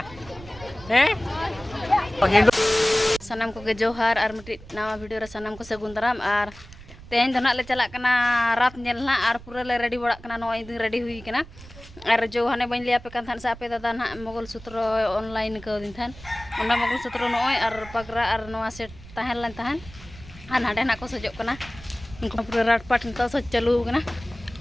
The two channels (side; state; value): right; noise; rumble, 18 dB below the sound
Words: hindol sanam ko ge johar ar miti nawa video ra sanam ko sagun daram ar तेन तो ना ले चला कना रात nail ना और पूरा ले रेडी बड़ा कना नो इदि रेडी हुई कना और जो हने बन लिया पे कान सा पे दादा ना मोगल सूत्र ऑनलाइन को दिन थान ओना मोगल सूत्र नो और पगरा और नोआ सेट तहन लन तहन आन हाडे ना को सजो कना उनको पूरा रात पाट तो सज चालू कना